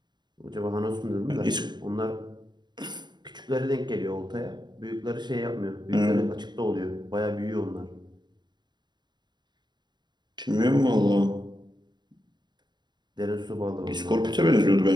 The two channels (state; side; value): late; left; 0.21 ms